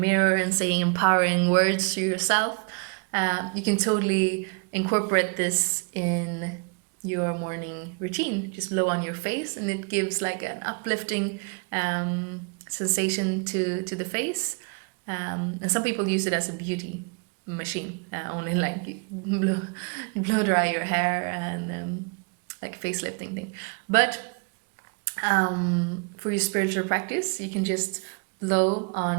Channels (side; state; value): left; quieter; 36.3 dB